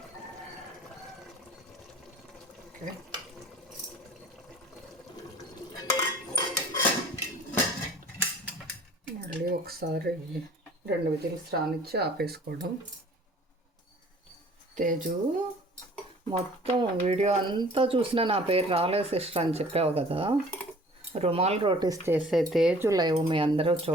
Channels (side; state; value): both; normal; correlation 0.50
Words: ఓకే, మళ్ళీ ఒకసారి 2 విజిల్స్ రానిచ్చి ఆపేసుకోవడం. తేజు మొత్తం వీడియో అంతా చూసినా నా పేరు రాలేదు సిస్టర్ అని చెప్పావు కదా. రుమాల్ రోటీస్ చేసే తేజు లైవ్ మీ అందరూ